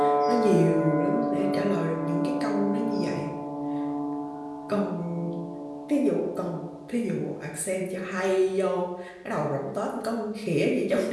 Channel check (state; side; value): identical; both; correlation 1.00